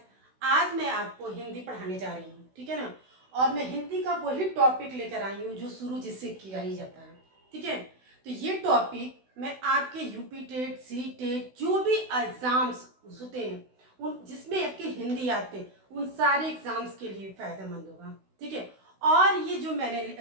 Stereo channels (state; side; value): late; left; 16 ms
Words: आज मैं आपको हिंदी पढ़ाने जा रही हूँ, ठीक है ना। और मैं हिंदी का वही टॉपिक लेकर आई हूँ जो शुरू जिससे किया ही जाता है, ठीक है। तो ये टॉपिक मैं आपके यूपी टेट, सी टेट, जो भी एग्जाम्स होते हैं उन जिसमें आपके हिंदी आते हैं उन सारे एग्जाम्स के लिए फायदेमंद होगा, ठीक है। और ये जो मैंने